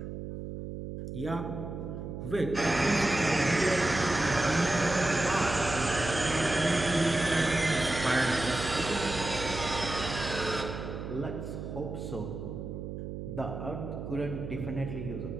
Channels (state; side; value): noise; right; hum, 7 dB below the sound